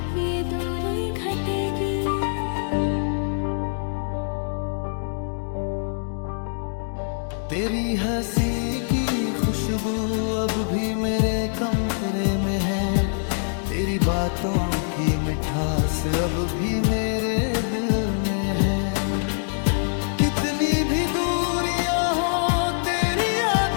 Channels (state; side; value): silent; right; digital silence